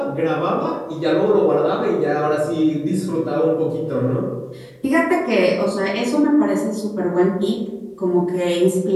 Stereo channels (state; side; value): identical; both; correlation 1.00